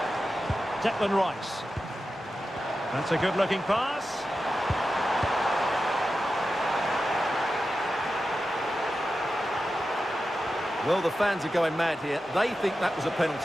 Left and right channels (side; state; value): both; normal; correlation 0.91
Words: Declan Rice. That's a good-looking pass. Well, the fans are going mad here. They think that was a